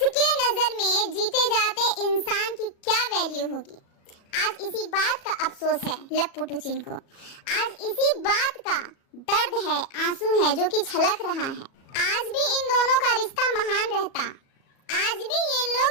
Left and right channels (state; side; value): late; right; 37 ms